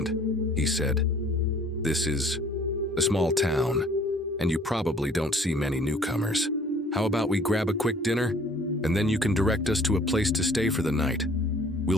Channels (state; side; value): normal; both; correlation 0.55